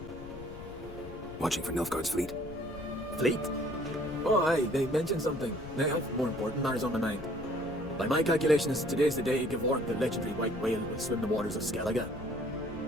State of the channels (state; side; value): noise; left; rumble, 14 dB below the sound